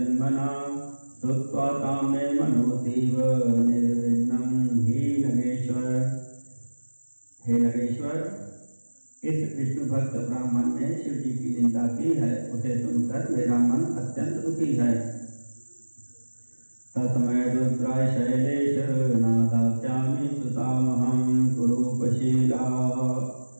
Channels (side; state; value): both; inverted; correlation -1.00